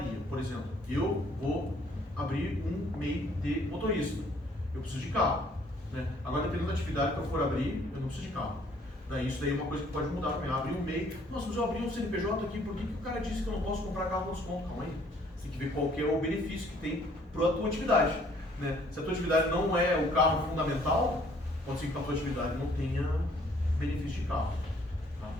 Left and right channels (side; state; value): both; normal; correlation 0.61